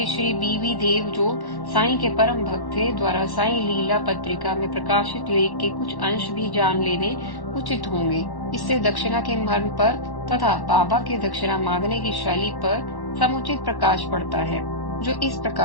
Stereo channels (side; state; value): right; late; 1.1 ms